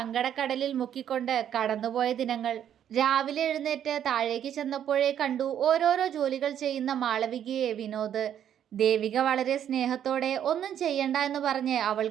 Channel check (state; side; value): quieter; left; 9.8 dB